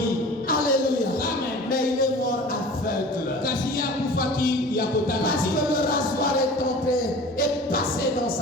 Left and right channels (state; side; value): normal; both; correlation 0.41